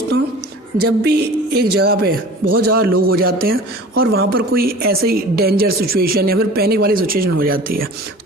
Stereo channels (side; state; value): both; normal; correlation 0.42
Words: जब भी एक जगह पे बहुत ज़्यादा लोग हो जाते हैं और वहाँ पर कोई ऐसे ही डेंजर सिचुएशन या फिर पैनिक वाली सिचुएशन हो जाती है,